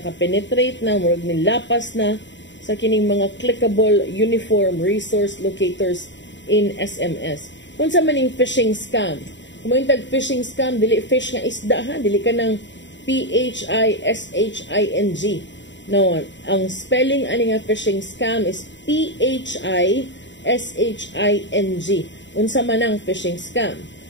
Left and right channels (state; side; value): late; right; 0.53 ms